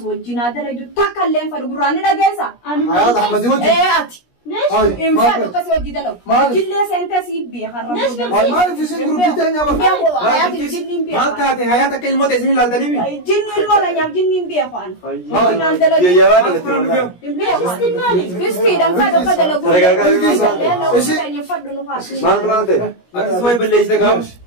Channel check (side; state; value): right; late; 17 ms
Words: وجينا ده ليدو تكلم فدقراني ده جالسة حياة أحمد وجه إيه أتي إن فادو كسي وجه ده لو جلّي سنتة سيبي خرّب ما في سن جروب تاني يا بابا حياتي جنين بيه ما تعطي حياتك الموت اسمه لالدني بي جنين ولا يام جنين بيه خان يا ولد بيستي دم فادو كده لو ما بلانته اسمه بلش ده